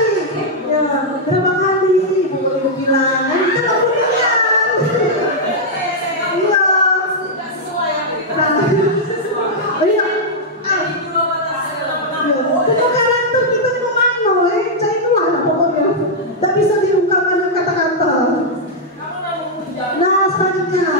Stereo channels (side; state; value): both; normal; correlation -0.05